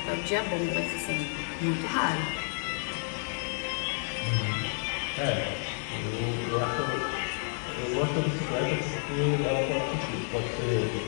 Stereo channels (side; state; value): right; silent; 58 dB below the other